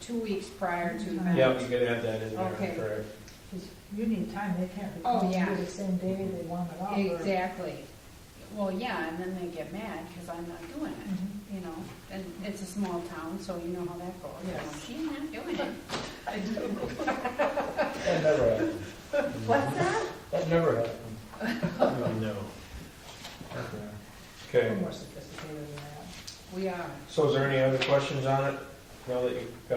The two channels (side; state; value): both; identical; correlation 1.00